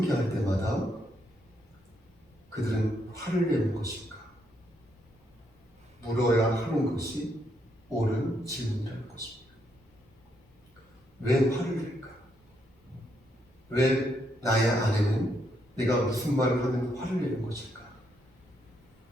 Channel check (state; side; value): normal; both; correlation 0.76